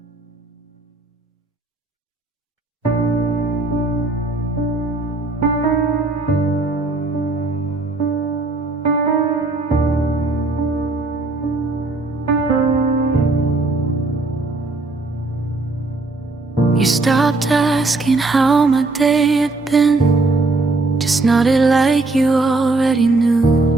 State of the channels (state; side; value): quieter; left; 3.2 dB